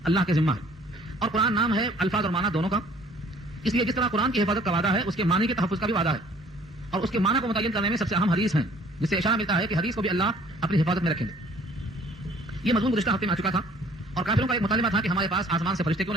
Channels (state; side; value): normal; both; correlation 0.56